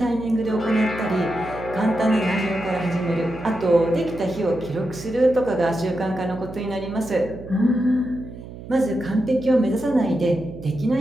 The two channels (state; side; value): noise; right; hum, 14 dB below the sound